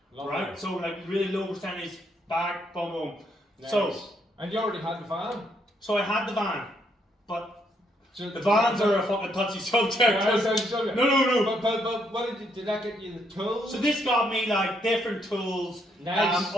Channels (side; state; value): both; normal; correlation 0.73